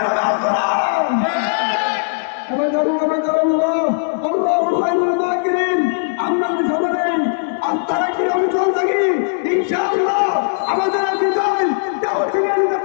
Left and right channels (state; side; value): silent; right; digital silence